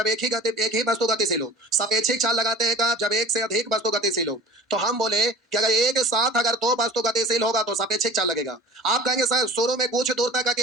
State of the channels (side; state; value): both; normal; correlation 0.42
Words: एक ही वस्तु गतिशील हो। सापेक्षिक चाल लगाते हैं कब? जब एक से अधिक वस्तु गतिशील हो। तो हम बोले कि अगर एक साथ अगर 2 वस्तु गतिशील होगा तो सापेक्षिक चाल लगेगा। आप कहेंगे सर शुरू में कुछ दूर तक